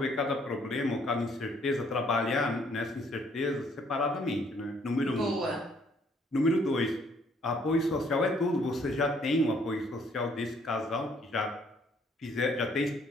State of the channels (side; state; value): both; normal; correlation 0.65